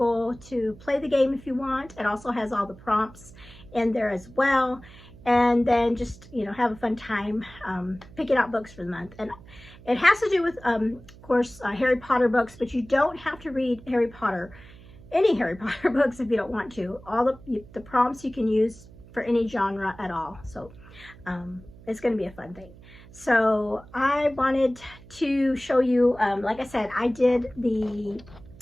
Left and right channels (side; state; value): right; noise; hum, 21 dB below the sound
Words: to play the game if you want. It also has all the prompts in there as well, and then just, you know, have a fun time picking out books for the month. And it has to do with of course Harry Potter books, but you don't have to read any Harry Potter books if you don't want to. All the prompts you can use for any genre at all, so it's going to be a fun thing. So I wanted to show you, like I said, I